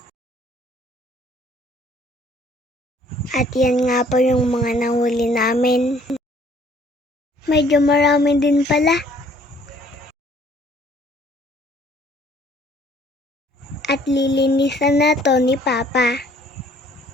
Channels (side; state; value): both; normal; correlation 0.59